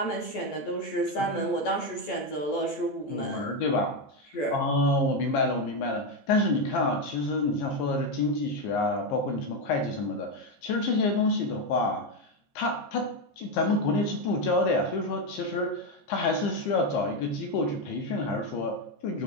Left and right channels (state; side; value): late; right; 14 ms